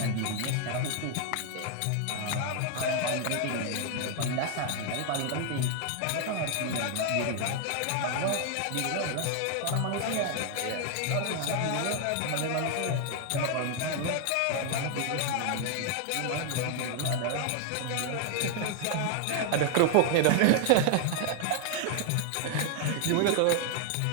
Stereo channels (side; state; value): both; different; correlation 0.00